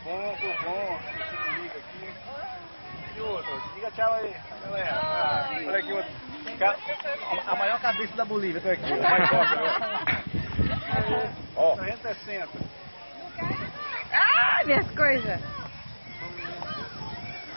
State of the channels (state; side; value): inverted; both; correlation -1.00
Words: bom. Liga aqui. E outro, diga tchau aí, galera. Olha aqui outro. A maior cabeça da Bolívia, tô aqui. Mais forte agora. Ó. 360. Ah, minhas coisas.